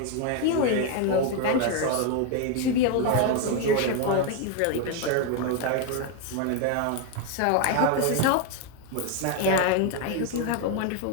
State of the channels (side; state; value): both; different; correlation 0.01